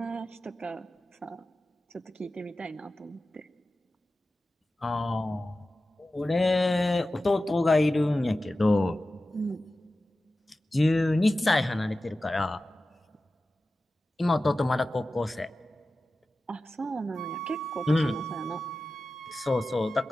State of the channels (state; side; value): normal; both; correlation 0.94